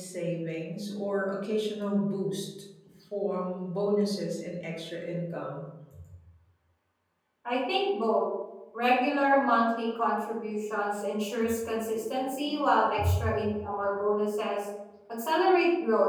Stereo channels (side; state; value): both; identical; correlation 1.00